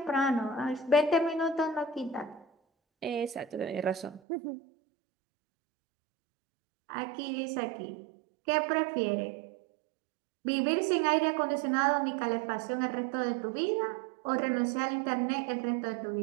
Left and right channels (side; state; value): left; drops out; at 4.2 s